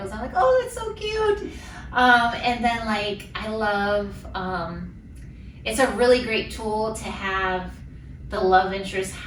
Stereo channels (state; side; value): identical; both; correlation 1.00